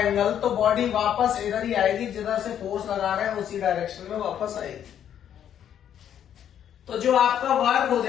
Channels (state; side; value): quieter; right; 9.7 dB